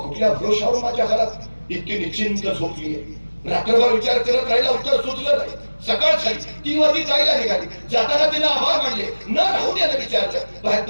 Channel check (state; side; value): inverted; both; correlation -1.00